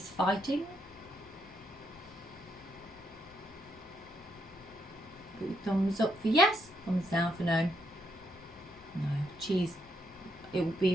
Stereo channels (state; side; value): normal; both; correlation 0.77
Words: fighting? Put your thumbs up for yes, thumbs down for no. No, cheese. It would be